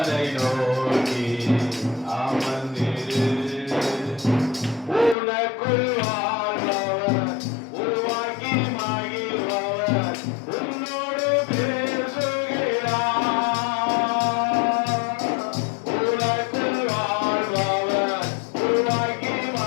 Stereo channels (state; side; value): drops out; right; at 5.2 s